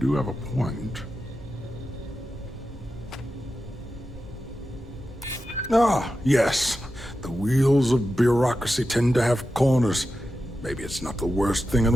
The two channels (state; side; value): normal; both; correlation 0.91